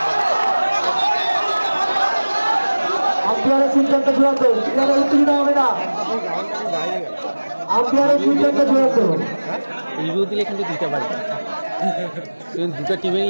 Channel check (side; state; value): both; inverted; correlation -1.00